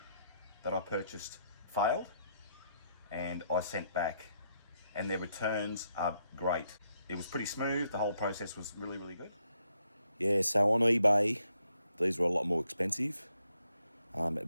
that I purchased failed and I sent back, and their returns are great. It was pretty smooth, the whole process was really good. Yeah, so on eBay, these were a lot more expensive, at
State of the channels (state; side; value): inverted; both; correlation -0.77